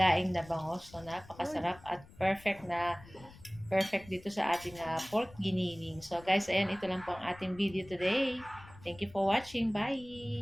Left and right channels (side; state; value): left; noise; rumble, 21 dB below the sound